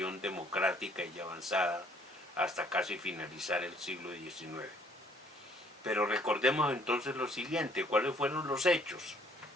democrática y avanzada hasta casi finalizar el siglo XIX. Pero recordemos entonces lo siguiente, ¿cuáles fueron los hechos?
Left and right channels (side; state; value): both; normal; correlation 0.62